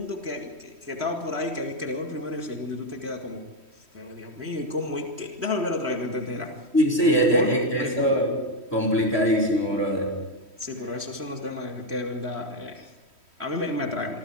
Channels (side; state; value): left; late; 3.1 ms